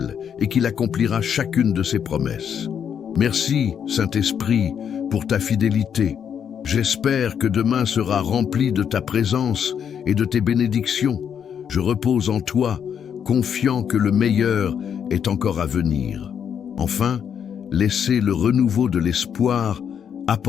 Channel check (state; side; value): quieter; right; 8.0 dB